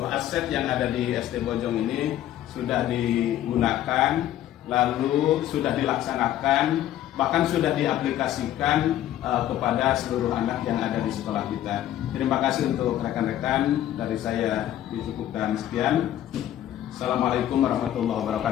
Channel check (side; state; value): right; quieter; 12.4 dB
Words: aset yang ada di SD Bojong ini sudah digunakan, lalu sudah dilaksanakan, bahkan sudah diaplikasikan kepada seluruh anak yang ada di sekolah kita. Terima kasih untuk rekan-rekan, dari saya dicukupkan sekian. Assalamualaikum warahmatullahi